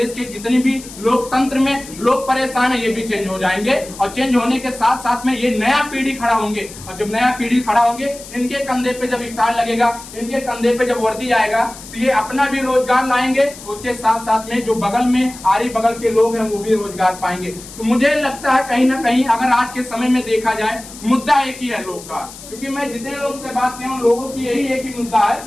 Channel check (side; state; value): left; noise; hiss, 16 dB below the sound